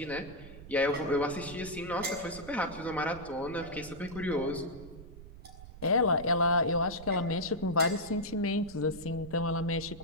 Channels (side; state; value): right; noise; rumble, 15 dB below the sound